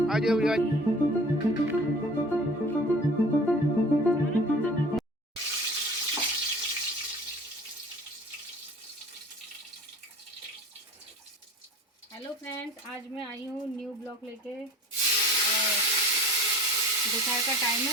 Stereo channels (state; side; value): normal; both; correlation 0.43